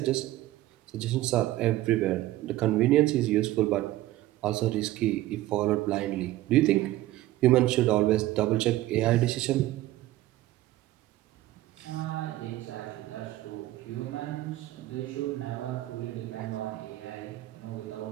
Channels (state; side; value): quieter; left; 15.9 dB